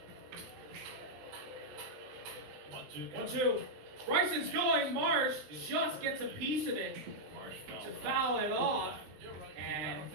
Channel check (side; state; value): left; late; 20 ms